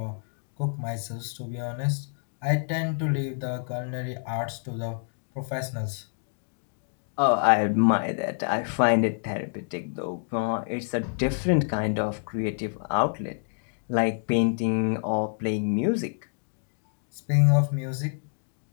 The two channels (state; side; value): silent; right; 60 dB below the other